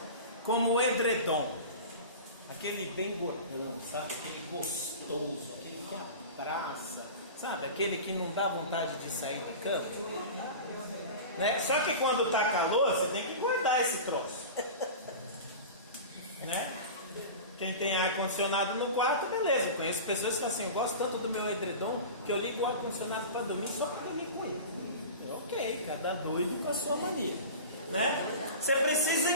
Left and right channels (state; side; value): inverted; both; correlation -0.32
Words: como o edredom. Aquele bem gordão, sabe? Aquele gostoso, aquele que abraça, sabe? Aquele que não dá vontade de sair da cama. Né? Só que quando está calor, você tem que guardar esse troço. Né? Quem tem ar-condicionado no quarto, beleza. Eu conheço pessoas que assim, eu gosto tanto do meu edredom que eu ligo o ar-condicionado para dormir só para dormir com ele. Ok, cada doido com a sua mania. Né? Você precisa